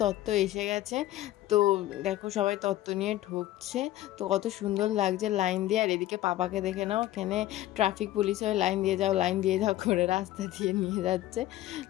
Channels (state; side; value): quieter; right; 14.8 dB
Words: তত্ত্ব এসে গেছে। তো দেখো সবাই তত্ত্ব নিয়ে ঢুকছে। তো কত সুন্দর লাগছে লাইন দিয়ে। আর এদিকে পাপাকে দেখে নাও, এখানে ট্রাফিক পুলিশ হয়ে লাইন দিয়ে যাও লাইন দিয়ে যাও করে রাস্তা দিয়ে নিয়ে যাচ্ছে।